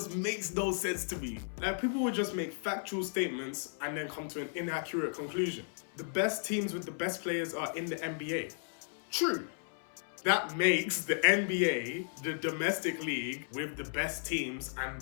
makes no sense to me. Like, people would just make factual statements and then come to an inaccurate conclusion. The best teams with the best players are in the NBA. True. That makes the NBA the domestic league with the best teams and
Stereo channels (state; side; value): silent; right; 55 dB below the other